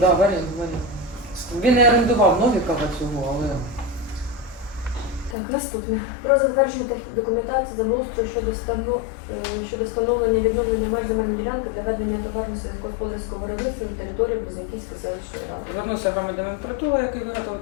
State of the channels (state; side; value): drops out; right; at 5.4 s